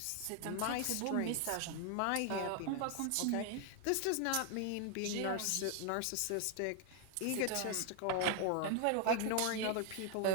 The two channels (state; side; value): different; both; correlation 0.00